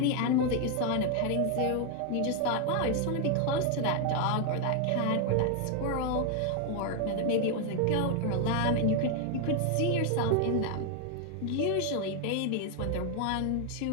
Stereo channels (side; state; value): both; different; correlation 0.00